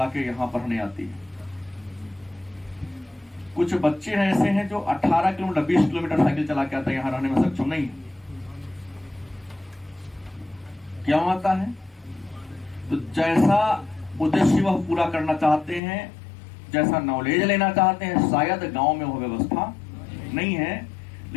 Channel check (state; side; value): drops out; right; at 15.8 s